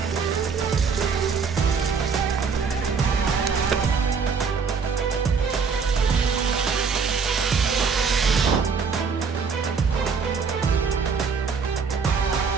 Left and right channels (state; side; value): quieter; left; 5.5 dB